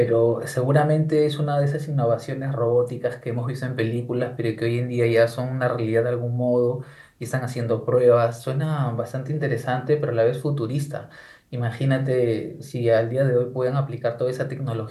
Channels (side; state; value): both; identical; correlation 1.00